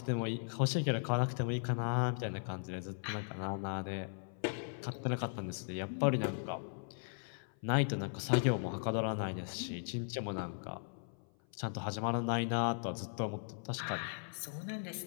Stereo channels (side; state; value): right; silent; 53 dB below the other